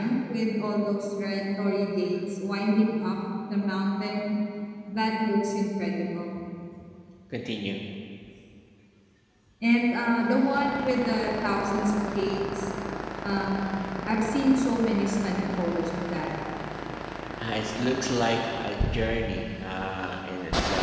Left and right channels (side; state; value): both; identical; correlation 1.00